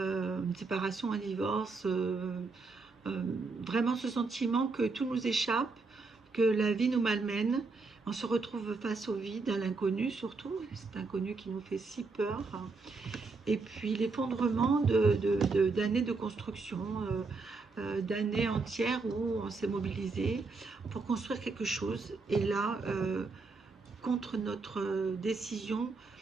séparation, un divorce, euh, vraiment ce sentiment que tout nous échappe, que la vie nous malmène. On se retrouve face au vide, à l'inconnu surtout, cet inconnu qui nous fait si peur. Et puis l'effondrement d'années de construction, d'années entières où on s'est mobilisé pour construire quelque chose. Et là, contre notre décision,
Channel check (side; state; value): left; quieter; 4.0 dB